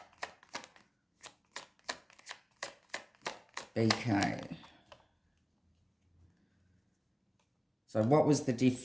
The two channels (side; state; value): both; identical; correlation 1.00